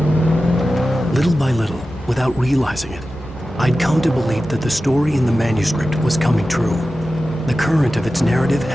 Little by little, without realizing it, I'd come to believe that the story in the manuscript was coming true. The current of its narrative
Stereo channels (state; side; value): normal; both; correlation 0.94